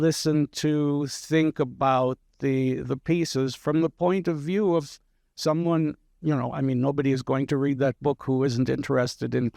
to, think about the pieces from the point of view of someone, nobody is going to read that book who isn't interested in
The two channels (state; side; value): identical; both; correlation 1.00